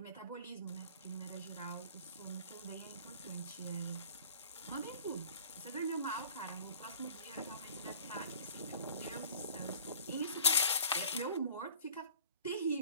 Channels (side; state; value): both; inverted; correlation -0.46